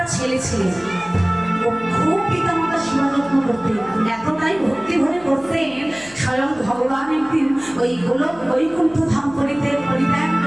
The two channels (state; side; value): noise; left; hum, 24 dB below the sound